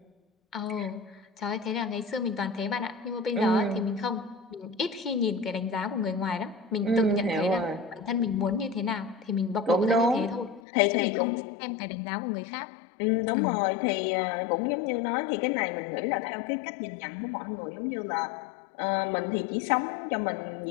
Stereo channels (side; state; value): right; drops out; at 10.6 s